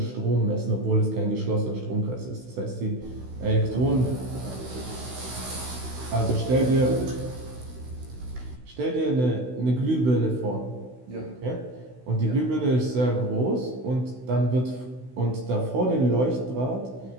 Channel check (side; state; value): left; late; 16 ms